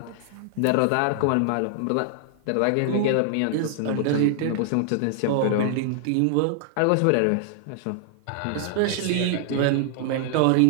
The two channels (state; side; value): different; both; correlation 0.00